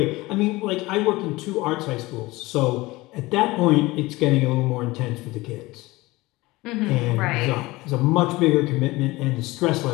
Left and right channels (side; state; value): right; quieter; 20.7 dB